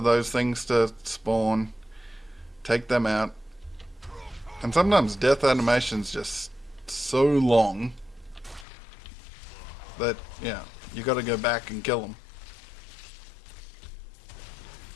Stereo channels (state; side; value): drops out; right; at 8.7 s